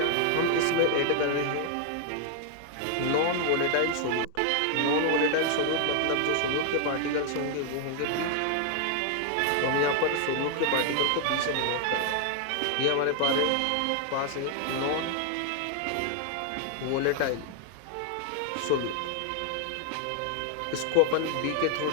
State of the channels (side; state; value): both; different; correlation 0.00